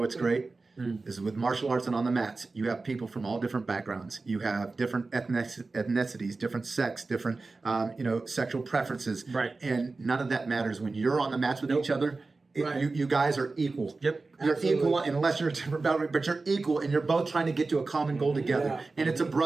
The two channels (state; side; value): quieter; left; 3.7 dB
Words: great? is with martial arts and on the mats, you have people from all different backgrounds. You have different ethnicities, different sex, different sexual preferences. Right. And none of that matters when you're on the mats with each other. You guys are equal. Yep. You're Absolutely. equal unless you're a different boundary, but you're equal and you're both trying to get to a common goal together. Yeah. And it's a